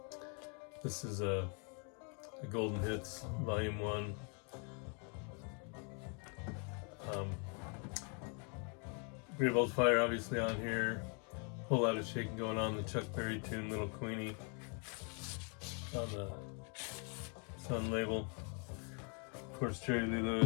This is a Golden Hits, Volume 1. Great Balls of Fire obviously on here. Whole lot of shaking going on. The Chuck Berry tune, Little Queenie, on the Sun label. Of course, Jerry Lee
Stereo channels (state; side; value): quieter; right; 37.8 dB